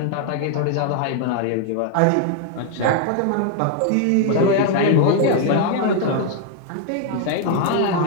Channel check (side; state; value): both; different; correlation 0.00